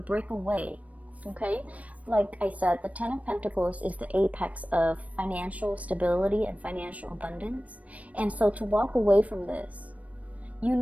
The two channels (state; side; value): late; left; 0.068 ms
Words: away, okay? Like I said, the Ten of Pentacles is the apex of financial stability and financial abundance. And so to walk away from this, you